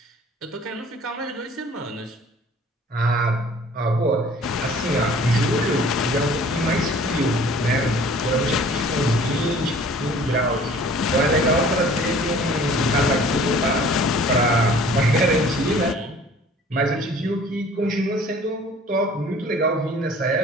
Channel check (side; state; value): both; normal; correlation 0.50